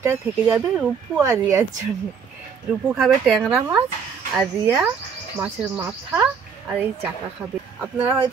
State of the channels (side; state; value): left; quieter; 6.4 dB